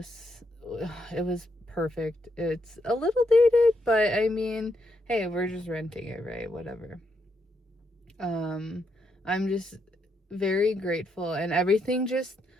it was perfect. It's a little dated, but I mean, hey, we're just renting it, right? Whatever. I'm just very grateful, and everything just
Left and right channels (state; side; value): normal; both; correlation 0.79